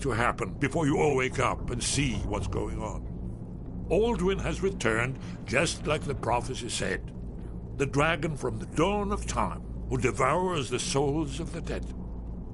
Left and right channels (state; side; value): identical; both; correlation 1.00